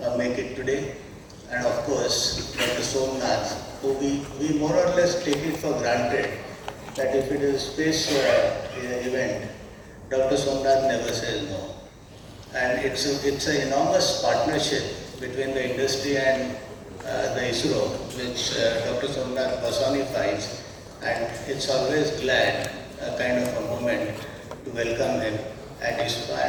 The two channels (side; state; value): both; identical; correlation 1.00